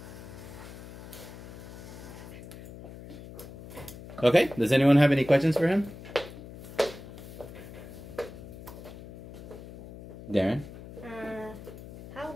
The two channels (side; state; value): left; noise; hum, 14 dB below the sound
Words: Okay, does anyone have any questions for him? Darren? How